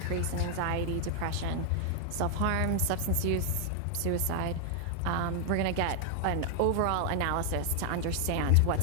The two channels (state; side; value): different; both; correlation 0.00